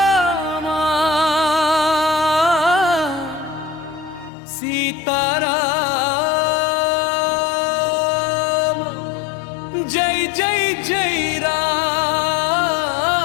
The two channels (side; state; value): right; drops out; at 4.3 s